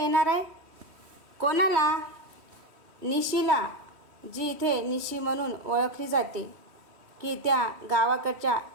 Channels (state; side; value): late; left; 3.1 ms